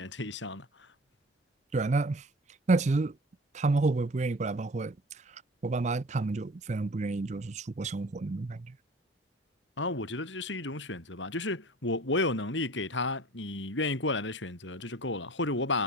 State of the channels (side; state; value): both; normal; correlation 0.42